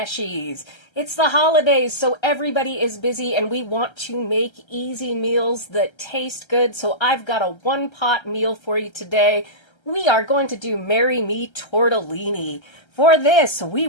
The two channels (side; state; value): right; late; 1.3 ms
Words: It's the holidays, so everybody is busy and we want to make easy meals that taste good. So I've got a one-pot meal for you today. We are going to do Me Tortellini. For this, we